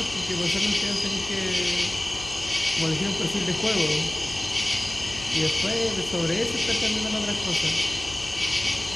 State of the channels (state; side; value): noise; left; hum, 15 dB below the sound